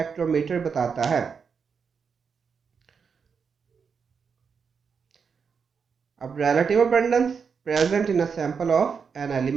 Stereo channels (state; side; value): quieter; left; 6.0 dB